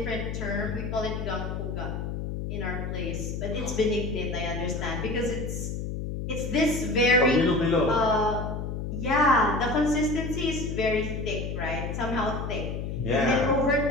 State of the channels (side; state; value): left; noise; hum, 4 dB below the sound